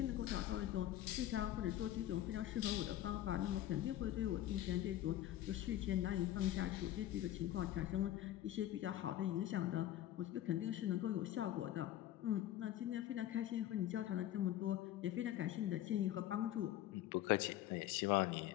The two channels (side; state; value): right; quieter; 13.1 dB